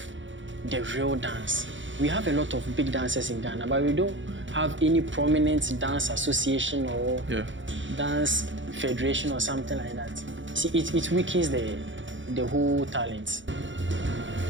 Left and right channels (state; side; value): late; left; 0.55 ms